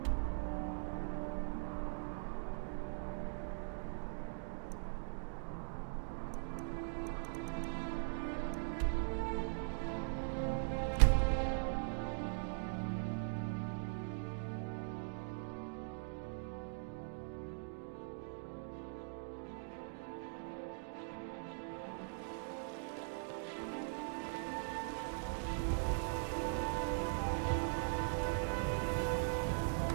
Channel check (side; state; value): left; silent; digital silence